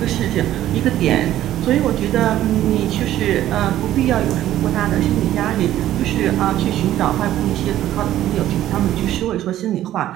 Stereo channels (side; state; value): left; quieter; 13.0 dB